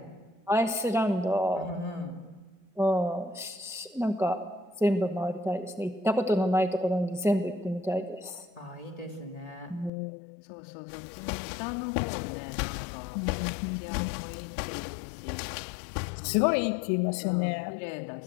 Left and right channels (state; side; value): drops out; right; at 9.9 s